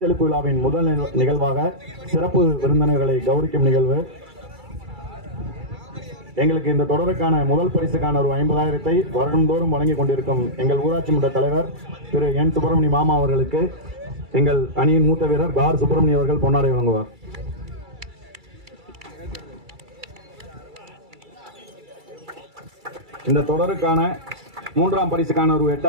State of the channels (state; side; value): late; left; 2.3 ms